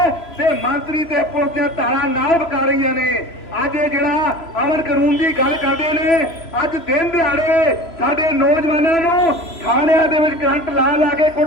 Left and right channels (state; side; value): late; right; 3.0 ms